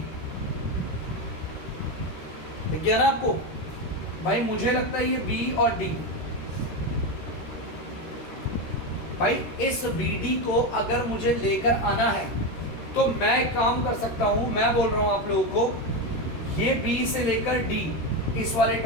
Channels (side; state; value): right; late; 13 ms